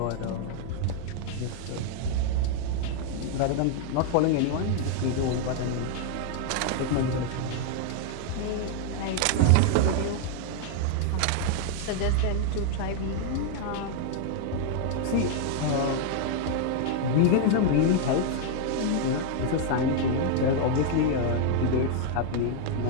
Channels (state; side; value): different; both; correlation 0.00